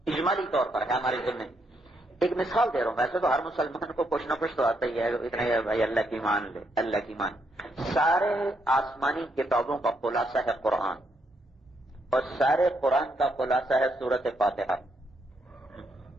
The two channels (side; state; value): both; normal; correlation 0.77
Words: اجمالی طور پر ہے ہمارے ذمہ۔ ایک مثال دے رہا ہوں، ویسے تو ہر مسلمان کو کچھ نہ کچھ تو آتا ہی ہے، اتنا ہی بھائی اللہ کی مان لے، اللہ کی مان۔ سارے آسمانی کتابوں کا خلاصہ ہے قرآن، اور سارے قرآن کا خلاصہ ہے سورۃ فاتحہ۔